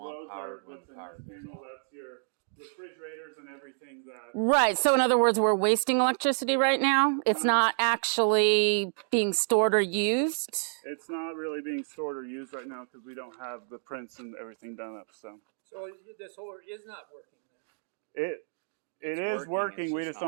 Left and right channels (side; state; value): left; silent; digital silence